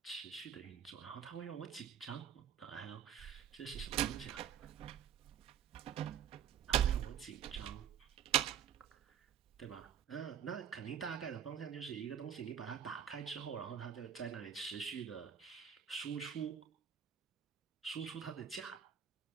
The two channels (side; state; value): left; quieter; 9.2 dB